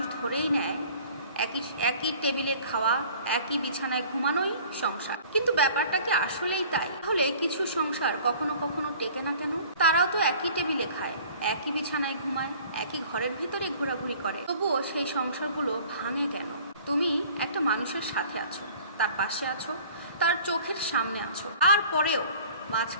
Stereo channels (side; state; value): both; inverted; correlation -0.49